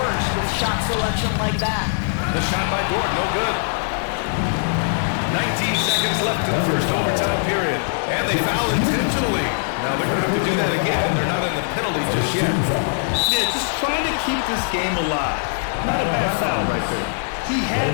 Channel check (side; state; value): right; silent; 61 dB below the other